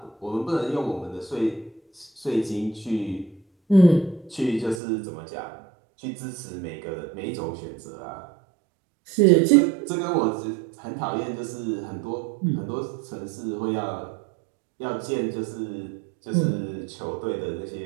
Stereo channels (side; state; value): left; drops out; at 4.8 s